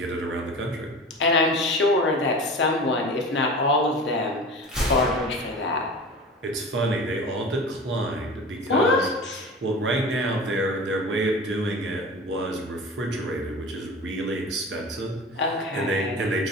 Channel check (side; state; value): both; normal; correlation 0.35